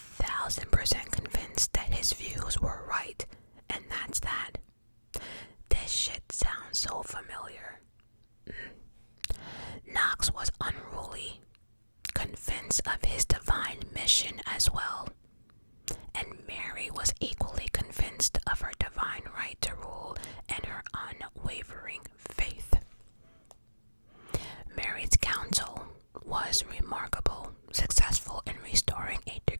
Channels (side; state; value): both; inverted; correlation -1.00